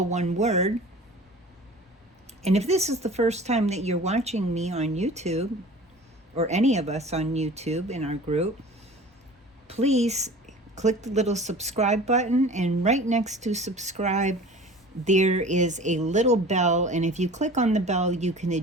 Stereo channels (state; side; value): normal; both; correlation 0.41